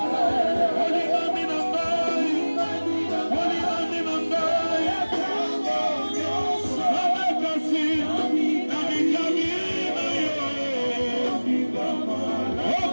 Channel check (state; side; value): inverted; both; correlation -1.00